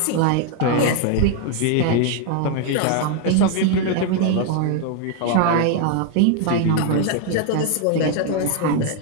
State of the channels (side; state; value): both; different; correlation 0.00